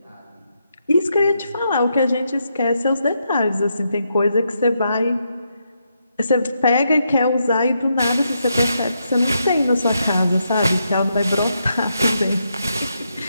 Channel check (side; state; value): both; inverted; correlation -0.81